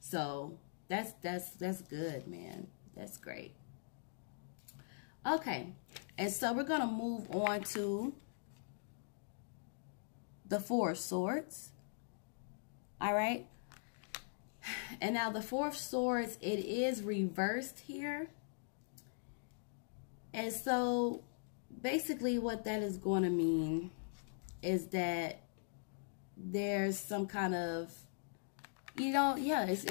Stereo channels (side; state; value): right; silent; digital silence